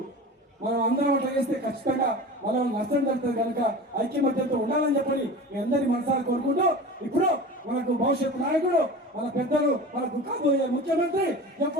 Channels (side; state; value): both; normal; correlation 0.34